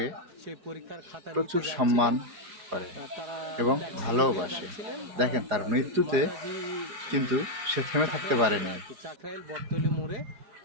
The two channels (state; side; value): late; left; 4.9 ms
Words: সেই পরীক্ষার খাতা প্রচুর নিতে সম্মান যাচ্ছিলেন। করে তারা এবং ট্যাক্সি যোগে ভালোবাসে। যাচ্ছিলেন। দেখেন, তার মৃত্যুতে মাতাজি কিন্তু সে থেমে থাকতে পারেনি। চাকরাইল বটতলী মোড়ে